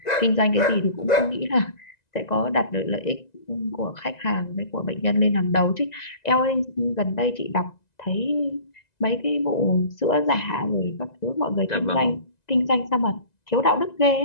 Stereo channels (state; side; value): late; right; 1.9 ms